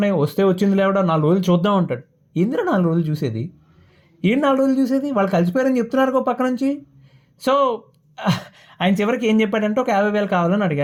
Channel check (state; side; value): identical; both; correlation 1.00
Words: వస్తే వచ్చింది లేవడా 4 రోజులు చూద్దాం అంటాడు. ఎందుకు 4 రోజులు చూసేది? ఏం 4 రోజులు చూసేది? వాళ్ళు కలిసిపోయారని చెప్తున్నారు ఒక పక్క నుంచి. సో ఆయన చివరికి ఏం చెప్పాడంటే ఒక 50,000 కావాలని